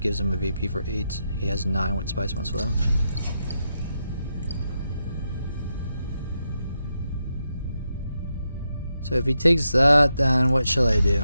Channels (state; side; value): inverted; both; correlation -0.84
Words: him a VP for 8. He has 9 with Spice Must Flow. So if he takes that, then what shall I do?